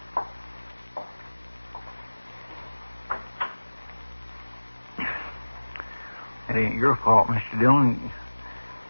It ain't your fault, Mr. Dillon.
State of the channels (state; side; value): inverted; both; correlation -1.00